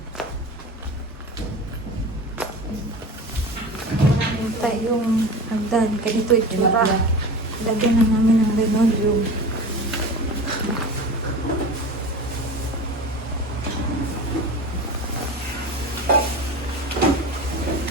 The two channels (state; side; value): normal; both; correlation 0.32